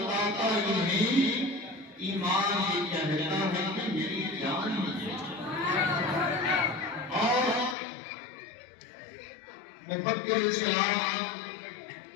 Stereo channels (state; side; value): drops out; right; at 7.8 s